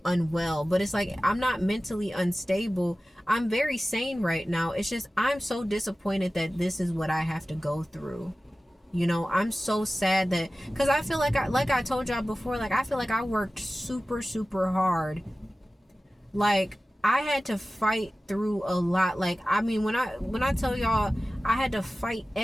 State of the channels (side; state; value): both; normal; correlation 0.96